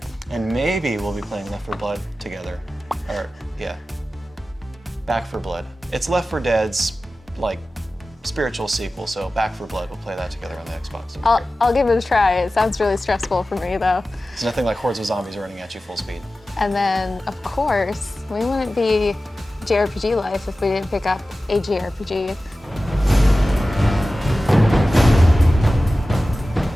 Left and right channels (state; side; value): normal; both; correlation 0.95